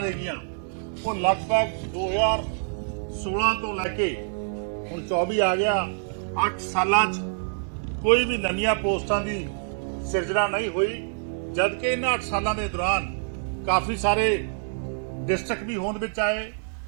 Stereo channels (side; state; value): left; silent; 61 dB below the other